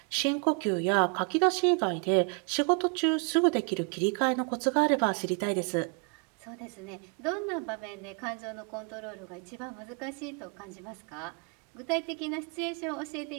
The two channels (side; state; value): left; quieter; 35.1 dB